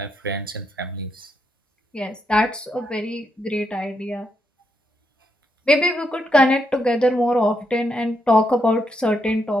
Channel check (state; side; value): normal; both; correlation 0.80